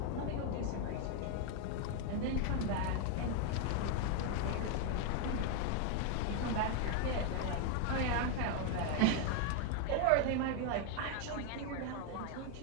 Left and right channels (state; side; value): different; both; correlation 0.00